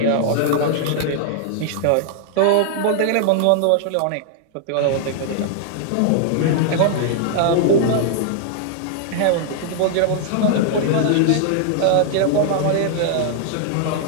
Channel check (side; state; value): both; different; correlation 0.00